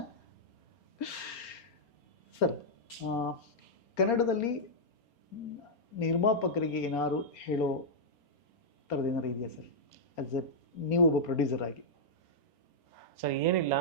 ಸರ್. ಕನ್ನಡದಲ್ಲಿ ನಿರ್ಮಾಪಕರಿಗೆ ಏನಾದ್ರು ಹೇಳೋ ಥರದ್ದು ಏನಾರು ಇದೆಯಾ ಸರ್, ಆಸ್ ಎ ನೀವು ಒಬ್ಬ ಪ್ರೊಡ್ಯೂಸರ್ ಆಗಿ? ಸರ್ ಏನಿಲ್ಲ,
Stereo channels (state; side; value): late; right; 4.3 ms